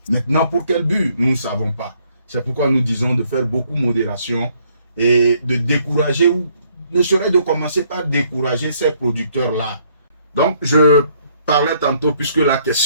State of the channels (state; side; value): inverted; both; correlation -0.67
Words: Maintenant, pour quel but? Nous ne savons pas. C'est pourquoi nous disons de faire beaucoup de modération et de décourager, ou ne serait de commencer par décourager ces producteurs-là. Donc, je parlais tantôt, puisque la